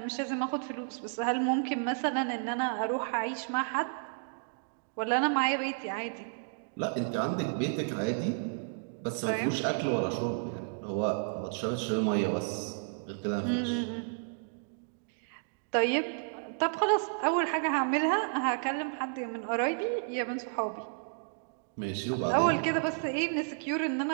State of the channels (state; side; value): silent; left; digital silence